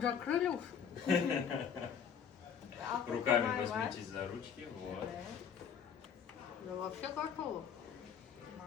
закрыли уж. Руками возьмитесь за ручки, вот. Я вообще готова.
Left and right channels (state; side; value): quieter; right; 7.5 dB